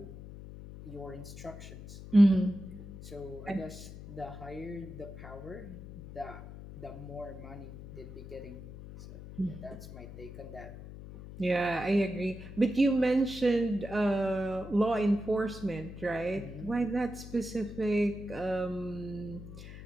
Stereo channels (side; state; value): left; noise; hum, 13 dB below the sound